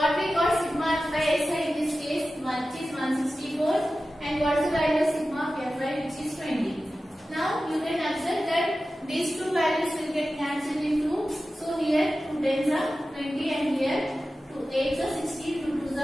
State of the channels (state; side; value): normal; both; correlation 0.94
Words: we got sigma of Fi xi in this case, which is 164, and what is the value of sigma of Fi, which is 20. Now, you can observe that these two values will get cancelled into. So here 2 tens are 20, and here 2 8s are 16, 2 2s